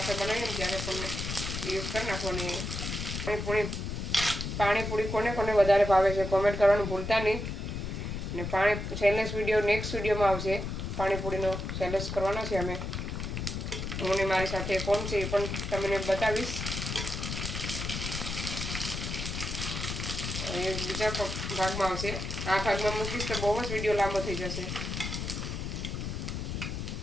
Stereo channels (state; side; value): noise; left; rumble, 4 dB below the sound